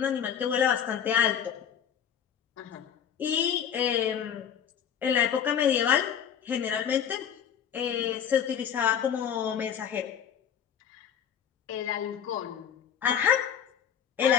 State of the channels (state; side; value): quieter; right; 8.5 dB